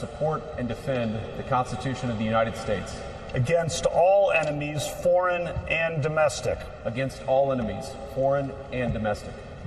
and defend the Constitution of the United States Against all enemies, foreign and domestic. against all enemies, foreign and domestic.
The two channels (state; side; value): identical; both; correlation 1.00